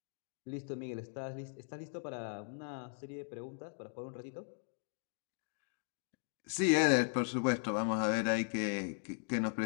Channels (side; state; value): right; silent; digital silence